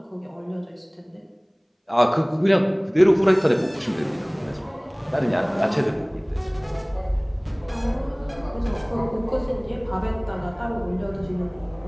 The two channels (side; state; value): both; identical; correlation 1.00